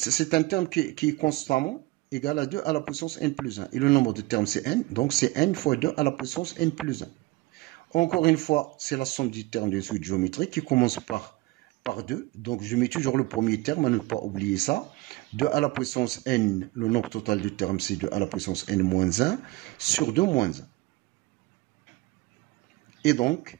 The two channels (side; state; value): left; quieter; 20.6 dB